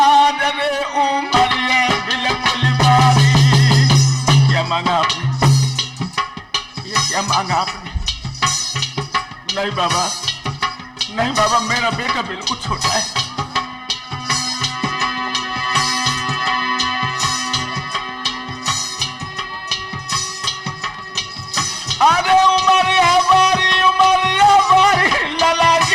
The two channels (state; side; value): identical; both; correlation 1.00